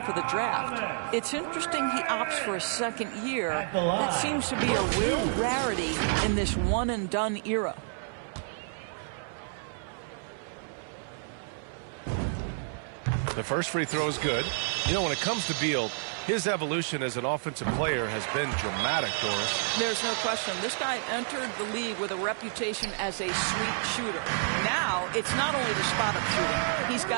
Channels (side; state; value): left; silent; 58 dB below the other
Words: for the draft. It's interesting he opts for a second year. That seems to be a real rarity in this one-and-done era. The first free throw is good. You know, when it comes to Beal, his evolution as an offensive player has been dramatic, Doris. There's no question. This guy entered the league with a reputation as a sweet shooter. Now, it's not only the spot-up shooting. He's